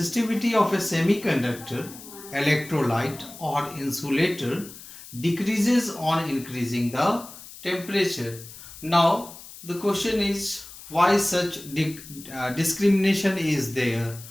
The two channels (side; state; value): left; noise; hiss, 16 dB below the sound